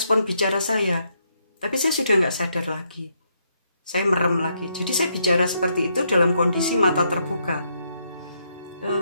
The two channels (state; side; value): inverted; both; correlation -0.76